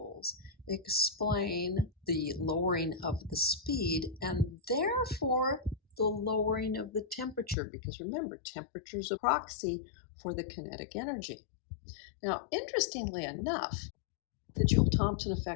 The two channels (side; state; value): right; drops out; at 7.6 s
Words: explain the lowering of the speed and therefore the lowering of the temperature, because remember, temperature is a proxy for the kinetic energy. Now, interestingly enough, the Joule-Thomson